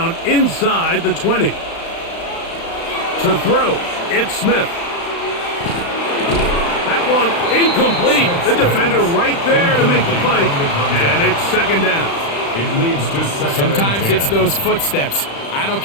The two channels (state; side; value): late; right; 35 ms